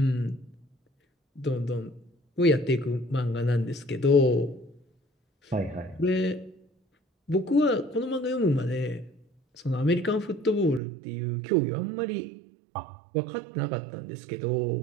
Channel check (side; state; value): left; drops out; at 10.8 s